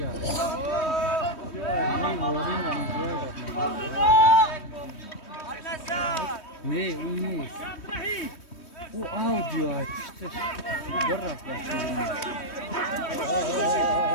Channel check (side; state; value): right; late; 3.2 ms